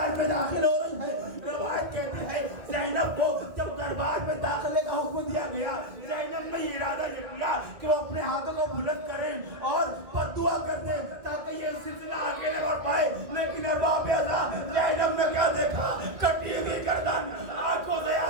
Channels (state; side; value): late; left; 2.0 ms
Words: میں داخل ہو رہی ہے. روایت کہتی ہے زینب کو جب دربار میں داخلے کا حکم دیا گیا, زینب نے یہ ارادہ یہ کیا کہ وہ اپنے ہاتھوں کو بلند کریں اور بددعا کر دیں تاکہ یہ سلسلہ آگے نہ بڑھ پائے. لیکن ارباب ازا زینب نے کیا دیکھا؟ کٹی ہوئی گردن, آنکھوں سے